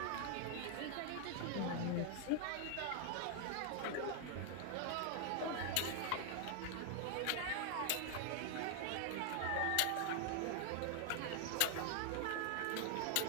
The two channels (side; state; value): both; different; correlation 0.00